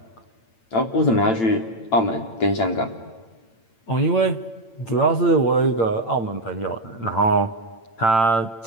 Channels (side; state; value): right; late; 8.9 ms